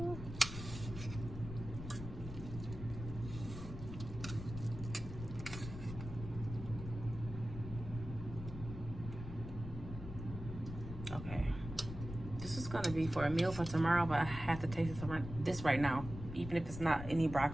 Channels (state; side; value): noise; left; rumble, 9 dB below the sound